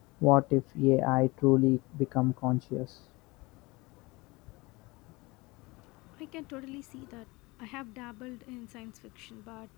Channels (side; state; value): right; quieter; 23.6 dB